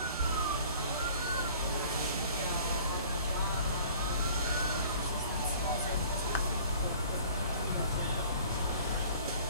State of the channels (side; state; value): both; inverted; correlation -0.49